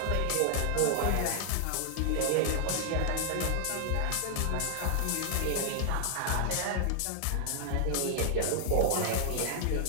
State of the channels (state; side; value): different; both; correlation 0.00